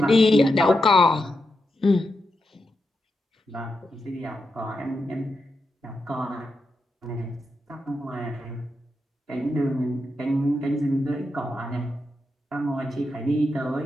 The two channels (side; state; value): both; normal; correlation 0.86